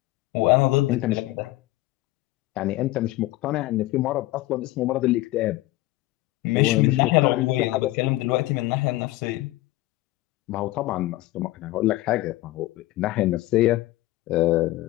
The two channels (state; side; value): quieter; right; 18.0 dB